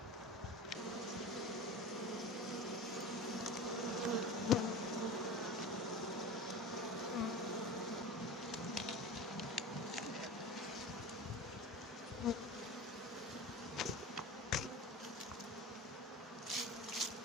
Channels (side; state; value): both; normal; correlation 0.31